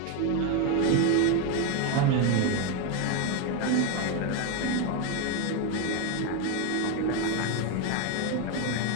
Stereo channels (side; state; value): both; different; correlation 0.02